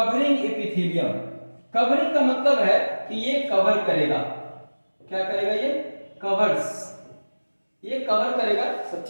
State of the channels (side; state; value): both; inverted; correlation -1.00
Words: एपिथेलियम, कवरिंग का मतलब है कि ये कवर करेगा। क्या करेगा? ये कवर्स, ये कवर करेगा सब